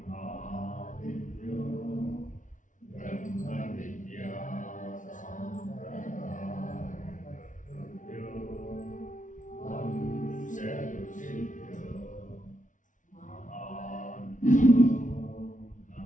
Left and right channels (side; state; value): right; late; 0.37 ms